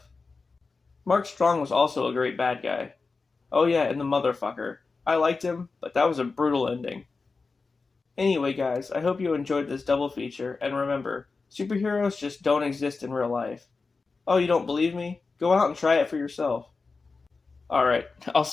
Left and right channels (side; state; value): right; quieter; 4.2 dB